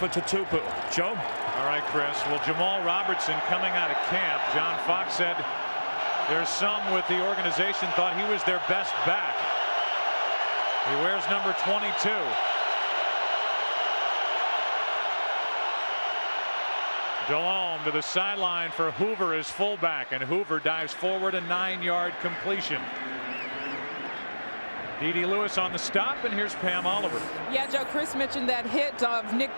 Tatupu. Joe? All right, Chris. Well, Jamal Robertson coming out of camp. John Fox said there's some with the organization thought he was their best back. He wears number 22. Delhomme to the sideline for Hoover as fullback, and Hoover dives forward, a 9-yard completion. D.D. Lewis on the stop, and here's Pam Oliver. Yeah, Joe, Chris mentioned that hit of Nick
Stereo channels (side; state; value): both; inverted; correlation -1.00